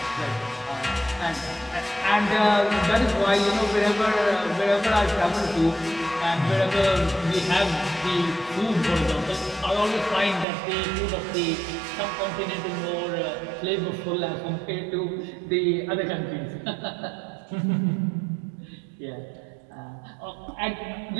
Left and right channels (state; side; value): drops out; left; at 10.5 s